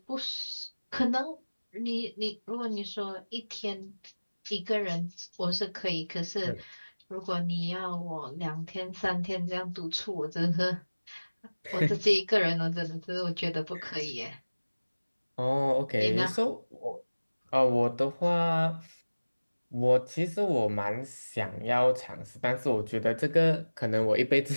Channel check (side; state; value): both; inverted; correlation -1.00